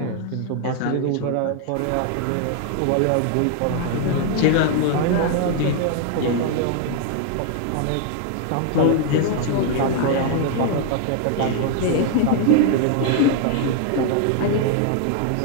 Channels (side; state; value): both; different; correlation 0.00